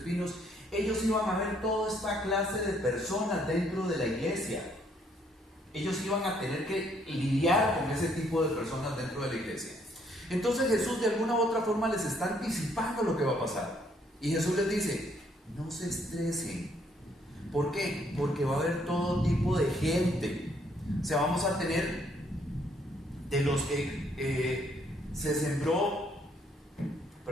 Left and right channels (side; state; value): both; normal; correlation 0.68